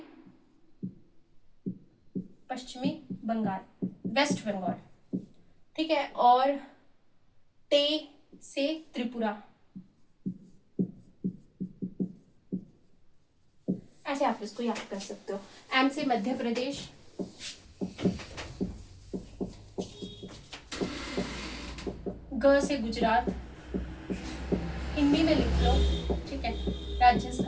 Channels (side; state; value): both; identical; correlation 1.00